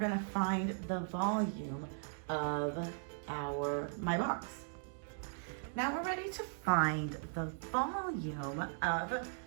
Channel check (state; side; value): silent; left; digital silence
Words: find the volume of my box. Now we're ready to find the volume of